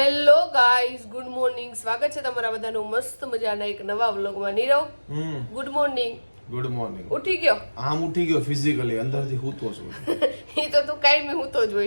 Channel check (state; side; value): inverted; both; correlation -1.00